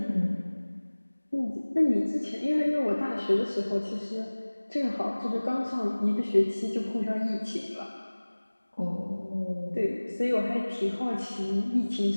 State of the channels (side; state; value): both; inverted; correlation -1.00